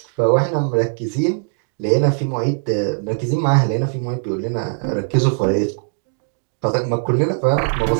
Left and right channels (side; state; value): left; silent; digital silence